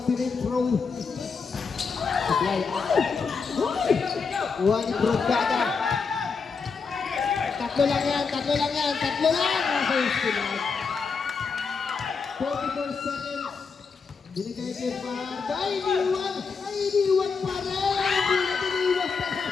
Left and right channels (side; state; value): right; quieter; 5.2 dB